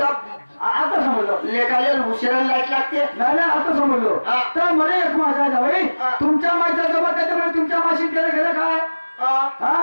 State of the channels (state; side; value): inverted; both; correlation -1.00